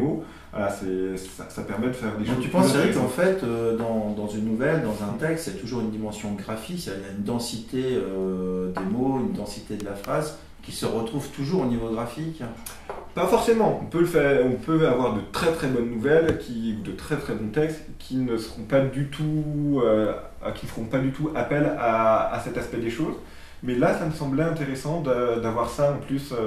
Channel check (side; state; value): both; identical; correlation 1.00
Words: voilà, ça permet de faire des choses. Donc tu penses, Eric, qu'en fait, dans une nouvelle, dans un texte, il y a toujours une dimension graphique, il y a une densité des mots, une densité de la phrase qui se retrouve toujours au niveau graphique? Pas forcément. On peut avoir de très très bonnes nouvelles, de très très bons textes qui ne feront pas du tout appel à cet aspect des choses. Mais là, ça me semblait intéressant d'avoir ça en plus